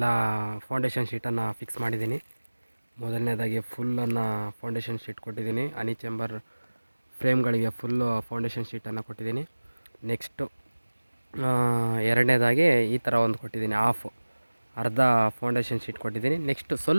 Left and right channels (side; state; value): both; inverted; correlation -1.00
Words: ಫೌಂಡೇಶನ್ ಶೀಟನ್ನು ಫಿಕ್ಸ್ ಮಾಡಿದ್ದೀನಿ. ಮೊದಲನೇದಾಗಿ ಫುಲ್ಲನ್ನು ಫೌಂಡೇಶನ್ ಶೀಟ್ ಕೊಟ್ಟಿದ್ದೀನಿ, ಹನಿ ಚೇಂಬರ್ ಫ್ರೇಮ್ಗಳಿಗೆ ಫುಲ್ಲು ಫೌಂಡೇಶನ್ ಶೀಟನ್ನು ಕೊಟ್ಟಿದ್ದೀನಿ. ನೆಕ್ಸ್ಟು ಎರಡನೇದಾಗಿ ಈ ಥರ ಒಂದು ಕೊಟ್ಟಿದ್ದೀನಿ, ಅರ್ಧ ಫೌಂಡೇಶನ್ ಶೀಟ್ ಕೊಟ್ಟಿದ್ದೀನಿ. ನೆಕ್ಸ್ಟು